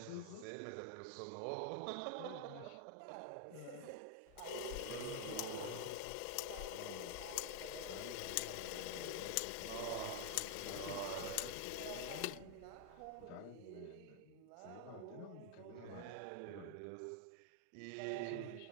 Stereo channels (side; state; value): both; different; correlation 0.00